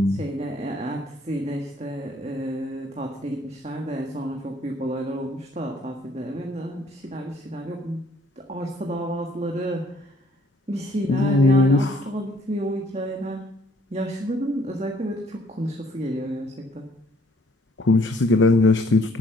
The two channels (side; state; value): both; normal; correlation 0.62